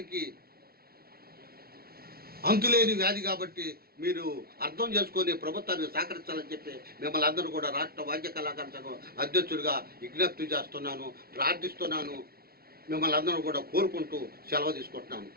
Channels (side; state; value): left; late; 0.44 ms